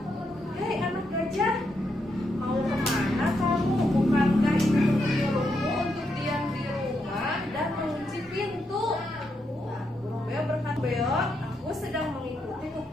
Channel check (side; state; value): both; normal; correlation 0.81